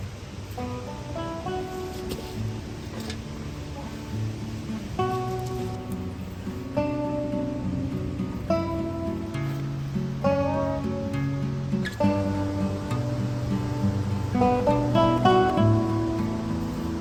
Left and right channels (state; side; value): identical; both; correlation 1.00